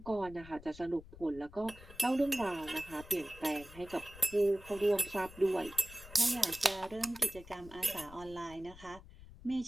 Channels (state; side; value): noise; left; rumble, 18 dB below the sound